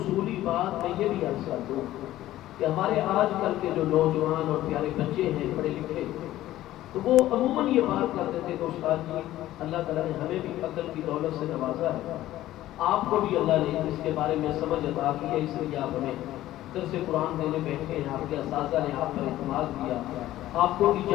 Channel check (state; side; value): quieter; right; 14.6 dB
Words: بات میں یہ بھی عرض کر دوں کہ ہمارے آج کل کے جو نوجوان اور پیارے بچے ہیں پڑھے لکھے، تو وہ عموماً یہ بات کرتے تھے کہ استاد جی اللہ تعالیٰ نے ہمیں بھی عقل کی دولت سے نوازا ہے، آپ کو بھی اللہ نے اس کے بارے میں سمجھ عطا کی ہے، اس لیے آپ ہمیں درس قرآن دینے بیٹھے ہیں، آپ کے اساتذہ نے آپ پر اعتماد کیا، آپ کو